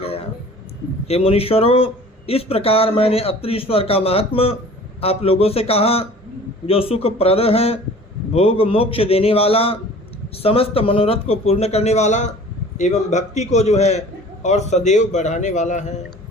हे मुनीश्वरों, इस प्रकार मैंने अत्रीश्वर का महात्म्य आप लोगों से कहा, जो सुखप्रद है, भोग मोक्ष देने वाला, समस्त मनोरथ को पूर्ण करने वाला एवं भक्ति को जो है और सदैव बढ़ाने वाला है।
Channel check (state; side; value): normal; both; correlation 0.45